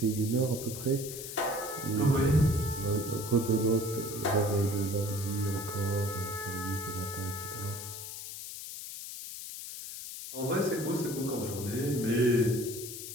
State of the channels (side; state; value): left; noise; hiss, 9 dB below the sound